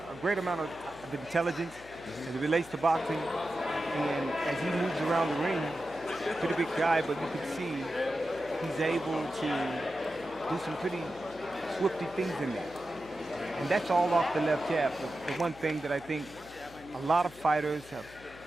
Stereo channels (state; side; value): noise; left; hum, 21 dB below the sound